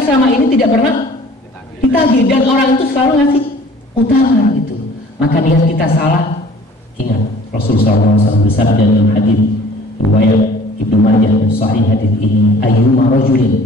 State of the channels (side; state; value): both; normal; correlation 0.50